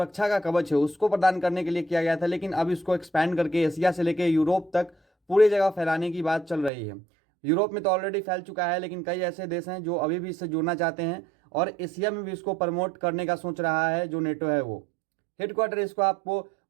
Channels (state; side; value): drops out; left; at 6.7 s